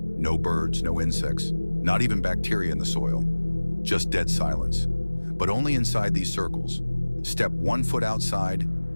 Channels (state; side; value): inverted; both; correlation -1.00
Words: birds, no insects, not even bacteria in the soil. Just dead silence. But only inside these circles. Step 1 foot outside,